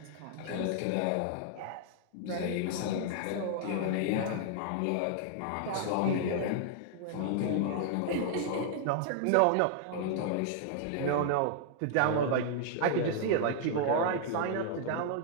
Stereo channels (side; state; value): both; different; correlation -0.01